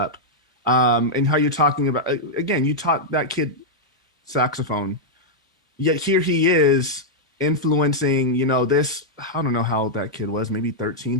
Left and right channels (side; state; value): both; normal; correlation -0.05